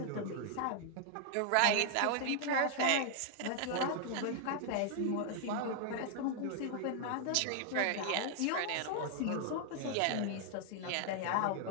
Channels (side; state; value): both; different; correlation 0.00